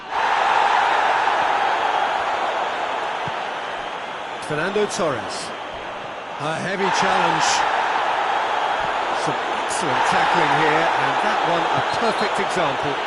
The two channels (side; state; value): both; identical; correlation 1.00